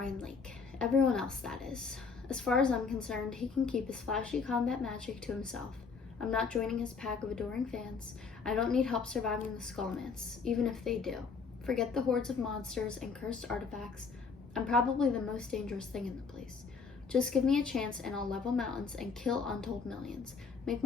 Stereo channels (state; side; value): quieter; right; 5.1 dB